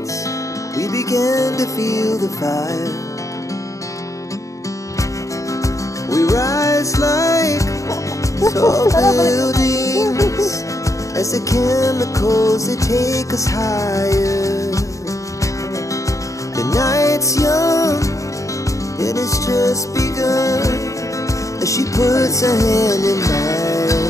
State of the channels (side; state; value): right; late; 0.16 ms